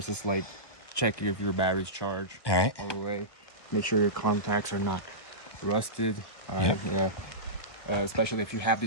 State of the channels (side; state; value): right; late; 1.1 ms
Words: is like check if your battery's charged all the way. Make sure your contacts are not rusted. All right, yeah. Especially if you have